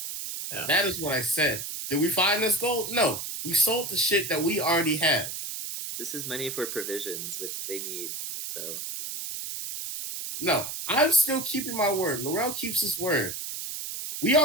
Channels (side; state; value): right; noise; hiss, 6 dB below the sound